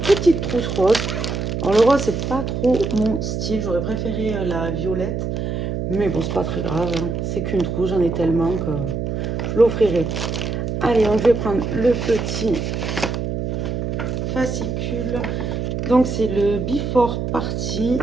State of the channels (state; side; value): noise; right; hum, 2 dB below the sound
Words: trousse rose. Alors le rose, c'est pas trop mon style. J'aurais préféré la violette. Mais bon, c'est pas très grave, hein. C'est qu'une trousse, j'en ai tellement que je l'offrirai. Allez, donc je vais prendre le petit fascicule. Donc c'est le Before Party.